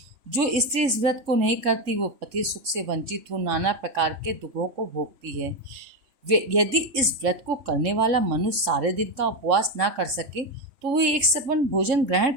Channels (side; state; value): left; late; 3.6 ms